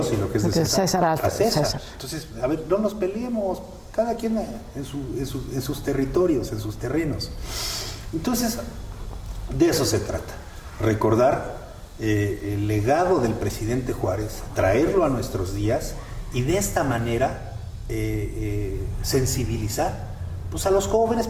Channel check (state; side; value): identical; both; correlation 1.00